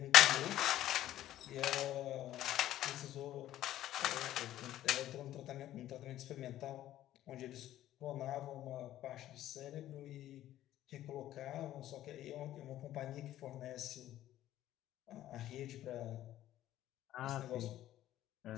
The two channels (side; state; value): right; quieter; 13.3 dB